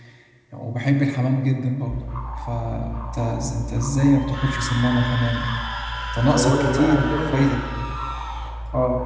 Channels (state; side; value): identical; both; correlation 1.00